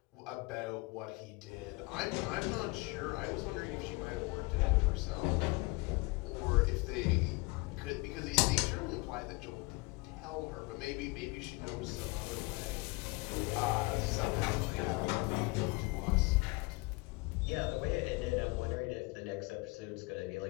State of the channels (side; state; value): right; quieter; 25.6 dB